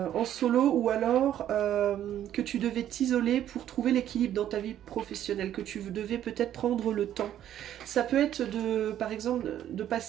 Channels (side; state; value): left; quieter; 11.2 dB